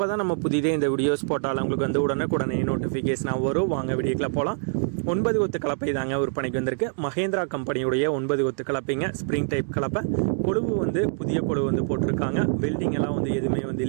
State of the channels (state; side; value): silent; left; digital silence